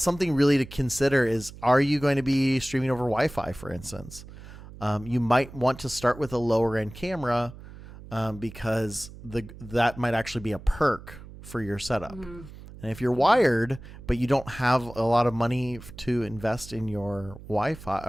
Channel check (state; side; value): noise; right; hum, 16 dB below the sound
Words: something really to consider is, are you going to be streaming over Wi-Fi, for instance? You might want to start with a lower end camera because that might actually be a perk for your setup. And if you're wired, but you don't have a lot of money to invest in your Wi-Fi